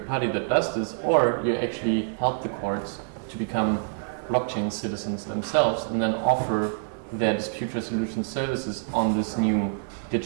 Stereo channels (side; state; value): left; silent; digital silence